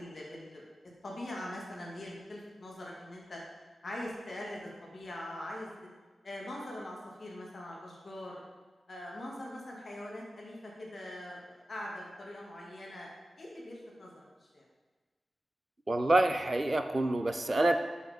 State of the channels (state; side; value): normal; both; correlation 0.94